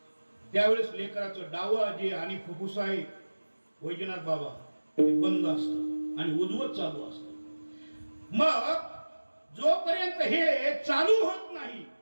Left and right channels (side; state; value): both; inverted; correlation -1.00